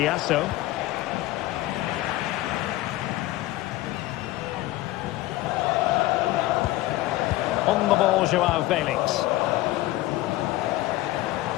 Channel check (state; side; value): quieter; right; 17.0 dB